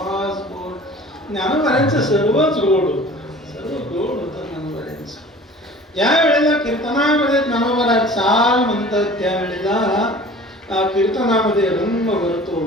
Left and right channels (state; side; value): normal; both; correlation 0.44